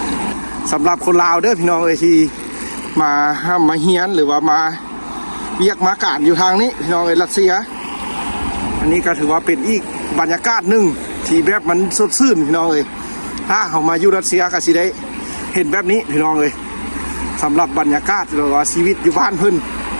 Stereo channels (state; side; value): inverted; both; correlation -1.00